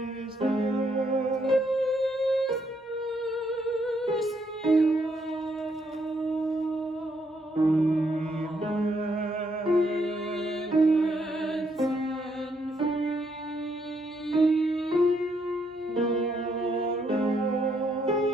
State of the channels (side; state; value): both; normal; correlation 0.74